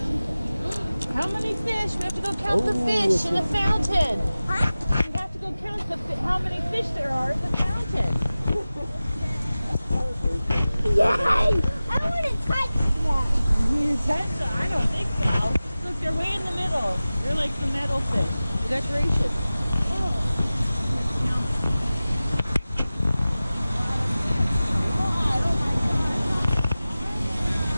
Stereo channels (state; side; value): inverted; both; correlation -0.96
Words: How many fish? We have to go count the fish in the fountain. Huh? We have to go count how many fish there are in the fountain. Yay! I don't want to touch them. I don't think so. Look, they're way in the middle. They're like the metal fish, the decoration.